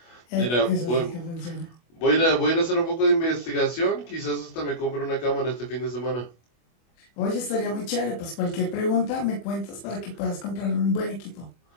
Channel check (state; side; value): late; right; 25 ms